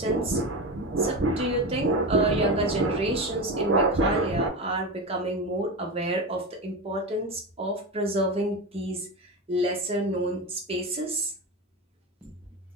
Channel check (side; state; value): both; normal; correlation 0.21